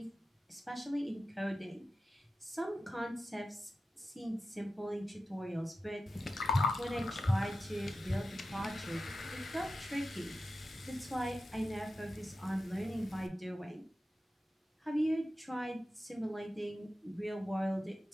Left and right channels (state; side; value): normal; both; correlation 0.92